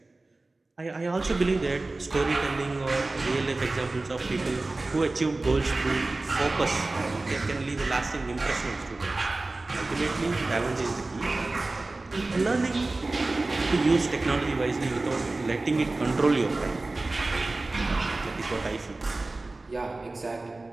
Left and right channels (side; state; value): left; quieter; 3.1 dB